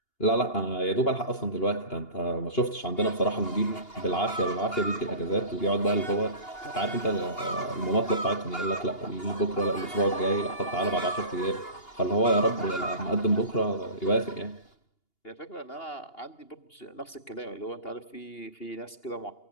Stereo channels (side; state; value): right; late; 2.8 ms